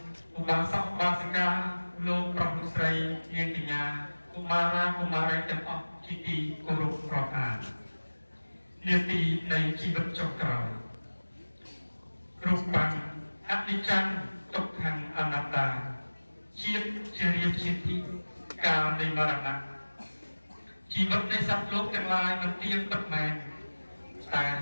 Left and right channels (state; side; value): inverted; both; correlation -1.00